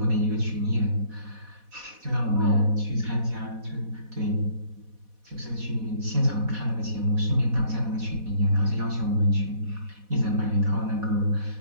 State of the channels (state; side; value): late; left; 4.1 ms